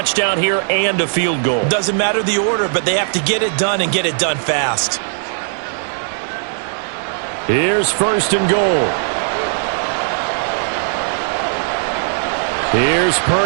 here and a field goal. Doesn't matter the order, but they have to get it done and get it done fast. Here's first and goal. Here's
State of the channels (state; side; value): silent; left; 67 dB below the other